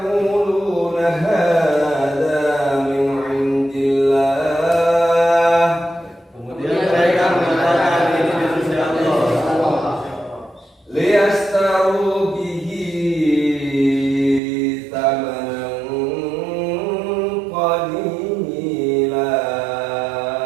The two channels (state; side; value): drops out; left; at 14.4 s